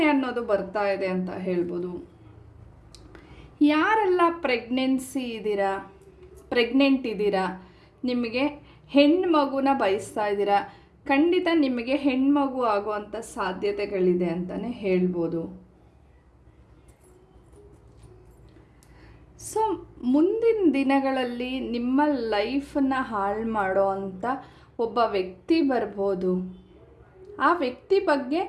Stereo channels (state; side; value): identical; both; correlation 1.00